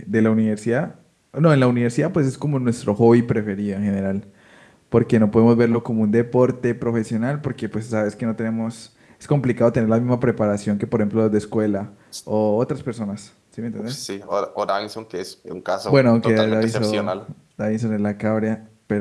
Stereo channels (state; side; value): identical; both; correlation 1.00